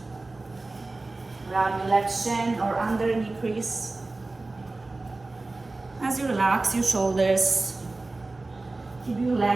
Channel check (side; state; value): left; quieter; 3.2 dB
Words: Grab your left shin or under knee crease. As you relax your shoulders, keep your